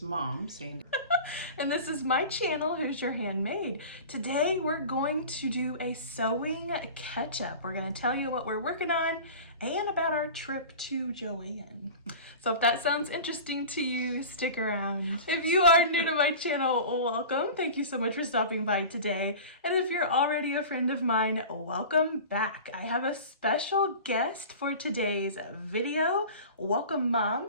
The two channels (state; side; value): inverted; both; correlation -0.36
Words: mom, Sandy. And this is my channel, Who's Your Handmade. Today we're going to do a sewing catch-up. We're going to tell you what we're working on and about our trip to JoAnn. So if that sounds interesting to you, stick around. If you are new to my channel, welcome. Thank you so much for stopping by today. And if you're already a friend of mine, welcome back. I have a special guest for today's video. Welcome,